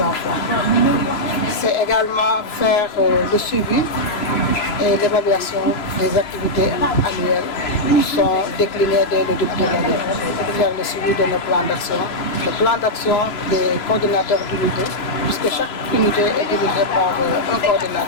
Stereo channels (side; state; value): right; late; 3.0 ms